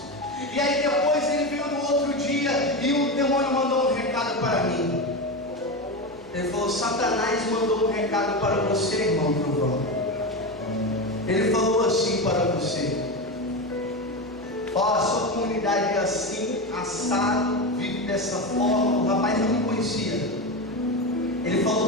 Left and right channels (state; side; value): noise; left; hum, 26 dB below the sound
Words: E aí depois ele veio no outro dia, e o demônio mandou um recado para mim. Ele falou: Satanás mandou um recado para você, irmão Trovão. Ele falou assim para você: ó, a sua comunidade é assim, assado, vive dessa forma. O rapaz não me conhecia. Ele